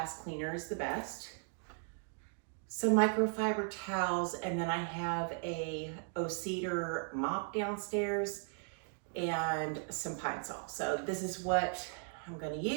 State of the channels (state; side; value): silent; left; 53 dB below the other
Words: cleaner is the best. Some microfiber towels, and then I have a O-Cedar mop downstairs and some Pine Sol. So this is what I'm gonna